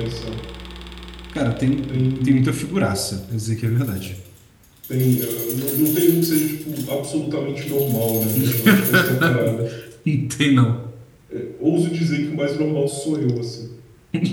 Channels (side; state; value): both; identical; correlation 1.00